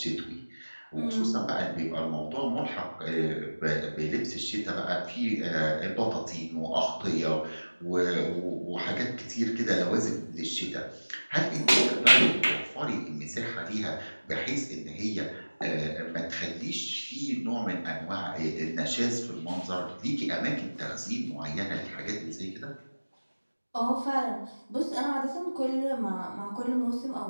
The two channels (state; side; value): inverted; both; correlation -1.00